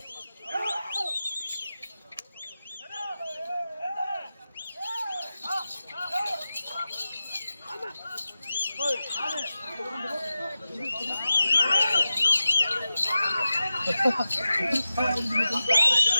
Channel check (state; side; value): inverted; both; correlation -0.94